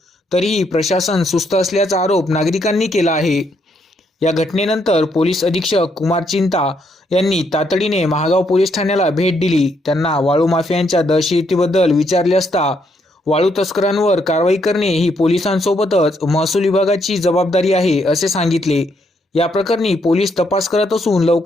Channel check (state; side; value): normal; both; correlation 0.74